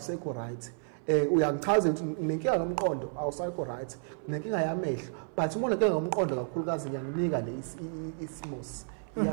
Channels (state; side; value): silent; left; 57 dB below the other